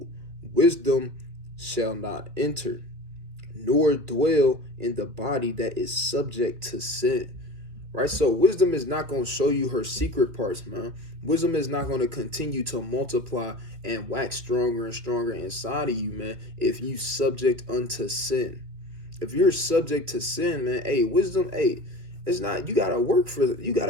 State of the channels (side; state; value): left; late; 2.7 ms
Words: wisdom shall not enter, nor dwell in the body that is subject to sin. Right? So wisdom is not going to show you her secret parts, man. Wisdom is not going to continue to multiply and wax stronger and stronger inside of you, man, if you subject unto sin. If you're subject to sin, man, hey, wisdom, hey, it's not, you gotta work for